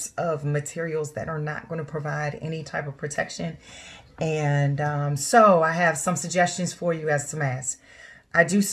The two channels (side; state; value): both; identical; correlation 1.00